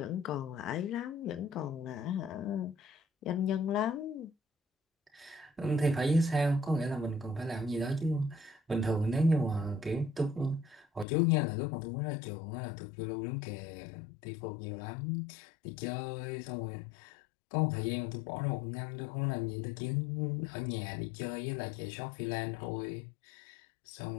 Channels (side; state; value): right; drops out; at 11.1 s